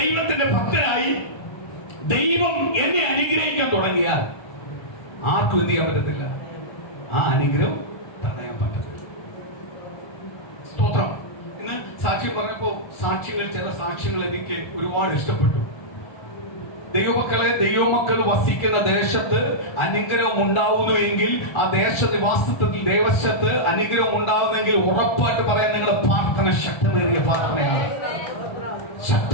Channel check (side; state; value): right; late; 1.3 ms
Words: ഭക്തനായി ദൈവം എന്നെ അനുഗ്രഹിക്കാൻ തുടങ്ങിയാൽ ആർക്കും എന്ത് ചെയ്യാൻ പറ്റത്തില്ല, ആ അനുഗ്രഹം തടയാൻ പറ്റത്തില്ല. സ്തോത്രം. ഇന്ന് സാക്ഷ്യം പറഞ്ഞപ്പോ സാക്ഷ്യങ്ങൾ, ചില സാക്ഷ്യങ്ങൾ എനിക്ക് ഒരുപാട് ഇഷ്ടപ്പെട്ടു. ദൈവമക്കളെ, ദൈവമക്കൾ വസിക്കുന്ന ദേശത്ത് അനുഗ്രഹം ഉണ്ടാവുന്നുവെങ്കിൽ, ആ ദേശനിവാസത്തിൽ ദേശത്ത് അനുഗ്രഹം ഉണ്ടാവുന്നെങ്കിൽ ഉറപ്പായിട്ട് പറയാൻ നിങ്ങളുടെ പ്രാർത്ഥന ശക്തമേറിയ പ്രാർത്ഥനയാണ്,